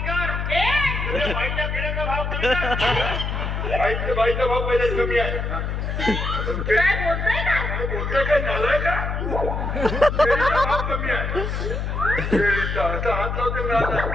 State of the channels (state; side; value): noise; left; hum, 2 dB below the sound